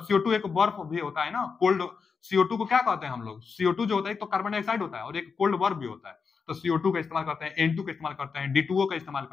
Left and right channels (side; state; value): right; quieter; 5.4 dB